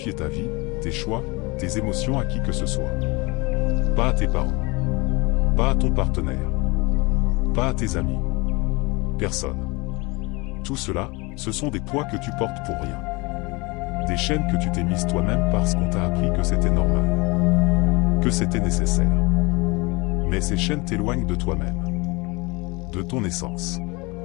ta vie, tes choix, tes émotions à qui que ce soit. Pas à tes parents. Pas à ton partenaire. Pas à tes amis. Personne. Tout cela, ce sont des poids que tu portes pour rien. Des chaînes que tu t'es mises toi-même parce qu'on t'a appris que c'était normal. Que c'était nécessaire. Mais ces chaînes t'éloignent de toi-même. De ton essence.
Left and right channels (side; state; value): right; quieter; 25.8 dB